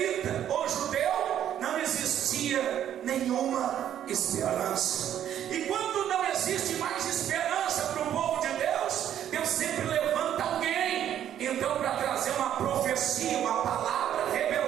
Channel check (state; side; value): quieter; left; 10.5 dB